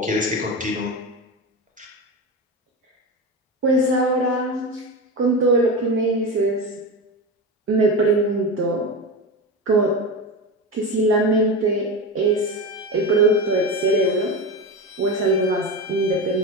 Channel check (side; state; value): both; normal; correlation 0.21